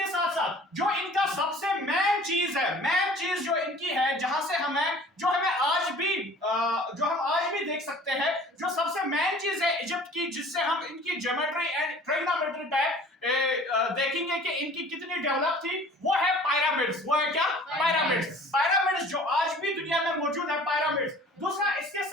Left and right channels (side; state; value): both; normal; correlation 0.48